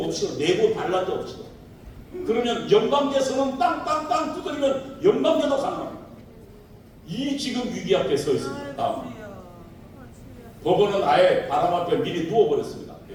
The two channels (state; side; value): identical; both; correlation 1.00